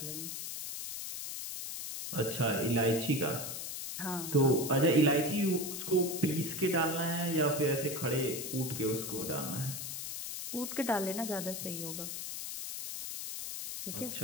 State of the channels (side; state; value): left; noise; hiss, 6 dB below the sound